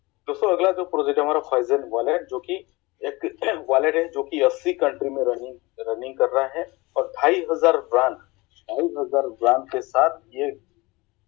दोस्तों अगला जो प्रोजेक्ट है हमारा फाइजन वॉलेट, जो कि एक वॉलेट है जो कि 80 कंट्री में रनिंग कर रहा है और 2,500 ब्रांड के साथ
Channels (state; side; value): quieter; right; 23.1 dB